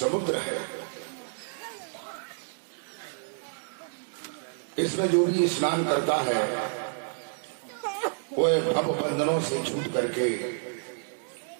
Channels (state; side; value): silent; left; digital silence